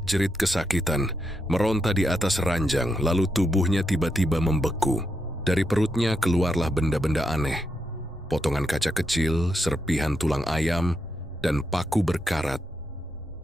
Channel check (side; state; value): both; normal; correlation 0.83